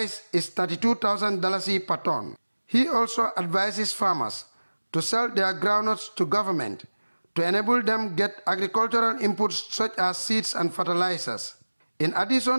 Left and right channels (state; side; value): inverted; both; correlation -1.00